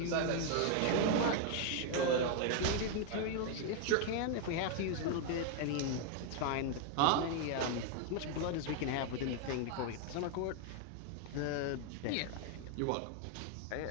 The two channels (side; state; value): both; different; correlation 0.00